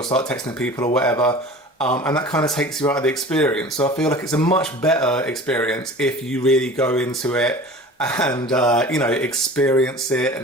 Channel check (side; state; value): both; normal; correlation 0.40